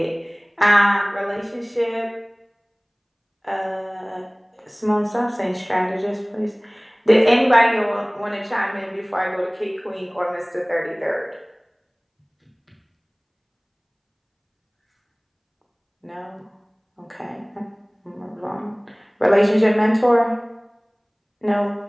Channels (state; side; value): identical; both; correlation 1.00